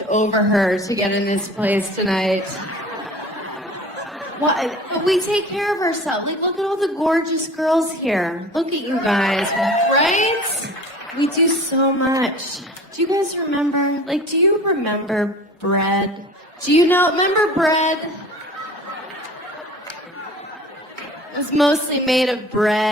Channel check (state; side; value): normal; both; correlation 0.42